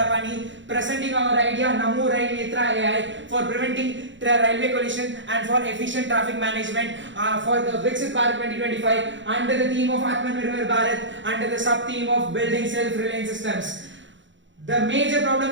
presenting our idea Namo Rail Netra AI for preventing railway collision and for efficient traffic management for the Viksit Bharat 2025 under the theme of Atmanirbhar Bharat under the sub theme of building self-reliant systems. The major problem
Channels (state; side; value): late; left; 0.54 ms